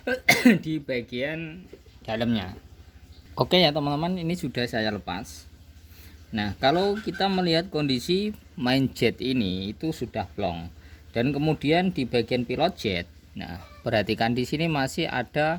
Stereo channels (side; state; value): both; identical; correlation 1.00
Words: di bagian dalamnya. Oke ya teman-teman, ini sudah saya lepas. Nah, kalau kita melihat kondisi main jet ini itu sudah plong, dan kemudian di bagian pilot jet, nah perhatikan di sini masih